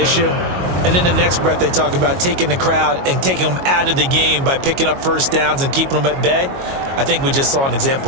And in the next breath, they talk about taking the crowd and taking them out of the game by picking up first downs and keeping them at bay. I think we just saw an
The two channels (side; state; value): left; late; 22 ms